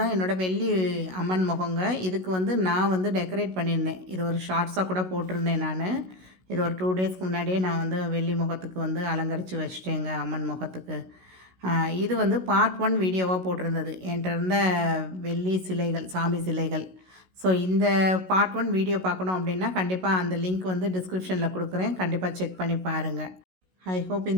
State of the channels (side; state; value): left; late; 16 ms